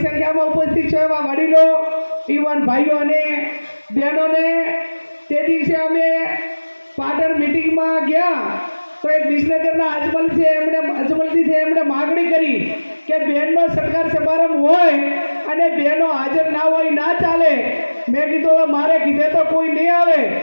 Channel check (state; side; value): inverted; both; correlation -1.00